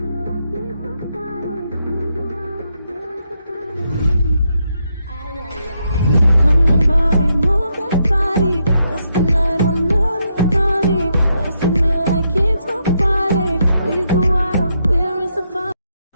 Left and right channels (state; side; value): inverted; both; correlation -0.80